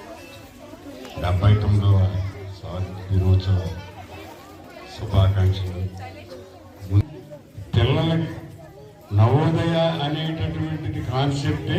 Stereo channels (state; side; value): identical; both; correlation 1.00